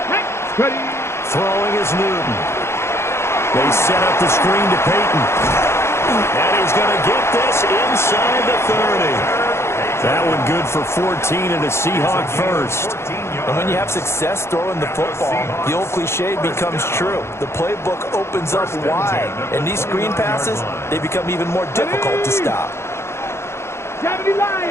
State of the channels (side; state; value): right; late; 0.13 ms